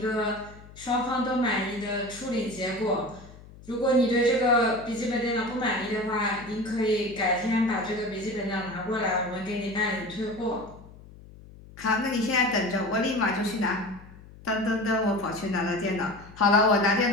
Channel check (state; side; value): noise; left; hum, 20 dB below the sound